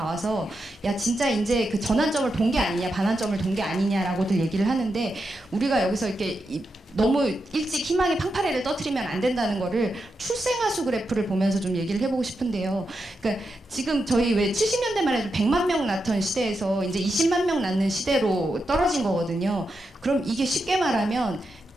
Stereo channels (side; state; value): both; normal; correlation 0.86